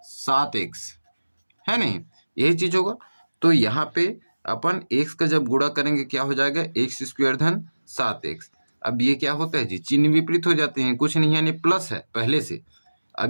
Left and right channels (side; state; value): both; inverted; correlation -1.00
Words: 7x, है नहीं, यही चीज होगा। तो यहाँ पे अपन x का जब गुणा करेंगे क्या हो जाएगा, x² + 7x। अब ये क्या होता है जी, चिन्ह विपरीत हो जाते हैं, कुछ नहीं, यानी प्लस है पहले से,